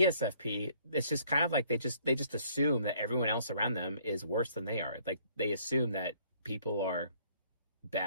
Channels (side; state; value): both; inverted; correlation -0.62